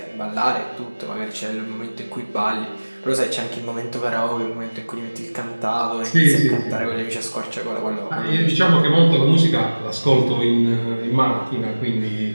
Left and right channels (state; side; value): inverted; both; correlation -1.00